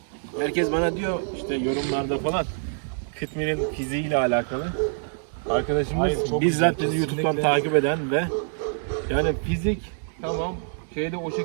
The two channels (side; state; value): left; silent; digital silence